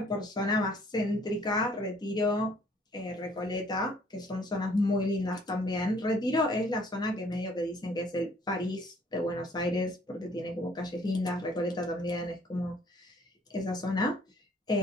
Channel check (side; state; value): both; normal; correlation 0.60